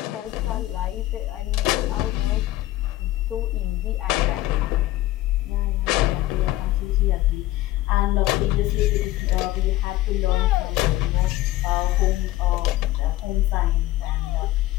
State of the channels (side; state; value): right; quieter; 16.1 dB